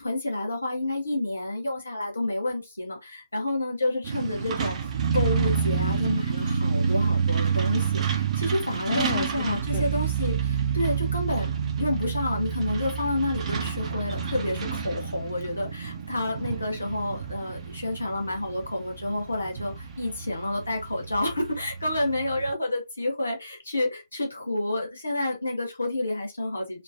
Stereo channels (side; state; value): both; inverted; correlation -0.75